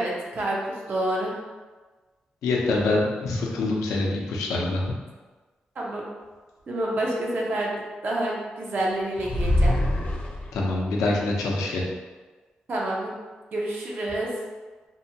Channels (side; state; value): both; normal; correlation 0.82